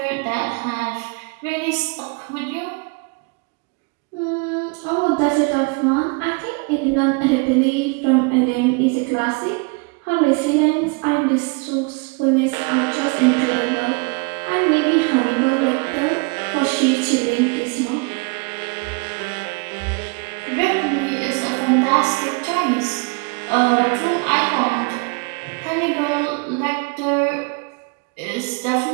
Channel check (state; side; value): quieter; left; 31.5 dB